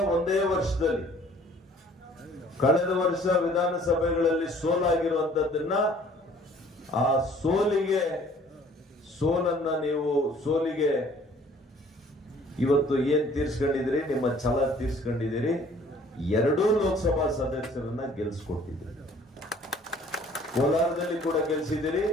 ಒಂದೇ ವರ್ಷದಲ್ಲಿ ಕಳೆದ ವರ್ಷ ವಿಧಾನಸಭೆಗಳಲ್ಲಿ ಸೋಲಾಗಿರುವಂತದ್ದನ್ನ ಆ ಸೋಲಿಗೆ ಇವತ್ತು ಏನ್ ತೀರ್ಸ್ಕೊಂಡಿದ್ದೀರಿ, ನಿಮ್ಮ ಛಲ ತೀರ್ಸ್ಕೊಂಡಿದ್ದೀರಿ. ಎರಡೂ ಲೋಕಸಭಾ ಸದಸ್ಯರನ್ನ ಗೆಲ್ಸ್ಕೊಟ್ಟಿದ್ದೀರಿ. ಕೋಲಾರದಲ್ಲಿ ಕೂಡ ಗೆಲ್ಸಿದ್ದೀರಿ,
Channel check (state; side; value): normal; both; correlation 0.55